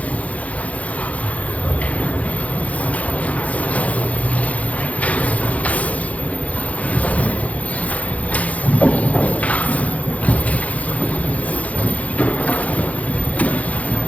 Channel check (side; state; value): right; late; 0.068 ms